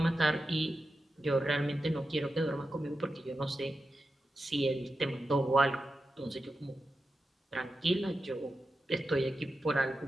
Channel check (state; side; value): normal; both; correlation 0.90